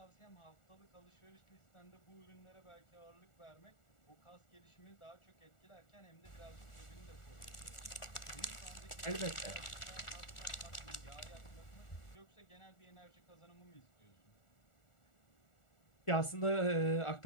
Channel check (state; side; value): late; right; 1.4 ms